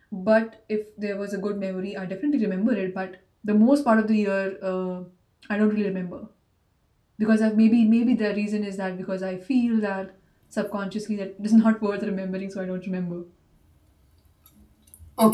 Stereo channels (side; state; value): both; identical; correlation 1.00